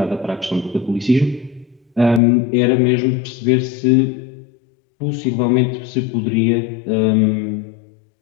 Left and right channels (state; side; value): drops out; right; at 2.2 s